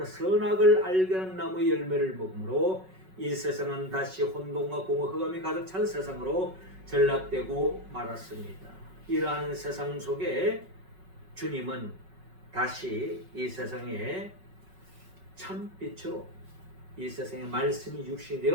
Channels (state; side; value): late; left; 5.4 ms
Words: 선악을 알게 하는 나무의 열매를 먹으므로 이 세상은 다시 혼돈과 공허 흑암이 가득 찬 세상으로 전락되고 말았습니다. 이러한 세상 속에 주님은 다시 이 세상에 참빛으로 이 세상에 말씀이 육신이